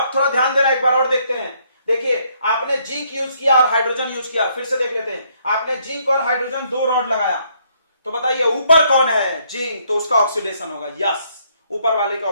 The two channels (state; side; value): inverted; both; correlation -0.69